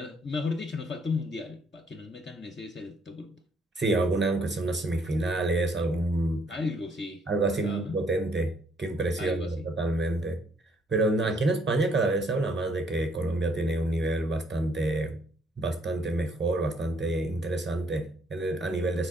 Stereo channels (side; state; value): both; normal; correlation 0.67